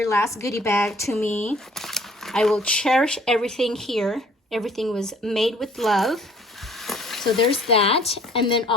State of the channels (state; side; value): normal; both; correlation 0.55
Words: last goodie bag to me. I will cherish everything here. Everything was made with love. So there's that. And then